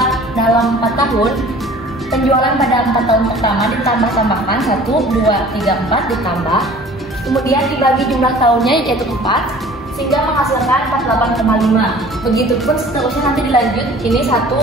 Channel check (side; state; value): both; normal; correlation 0.47